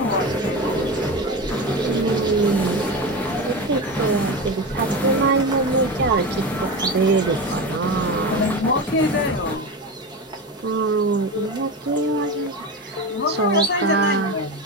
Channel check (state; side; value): normal; both; correlation 0.24